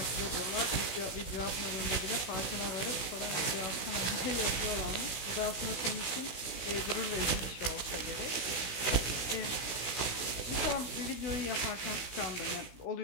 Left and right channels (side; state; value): right; late; 16 ms